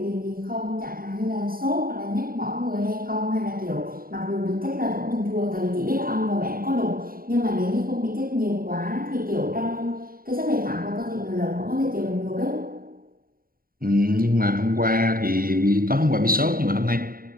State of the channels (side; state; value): left; late; 0.42 ms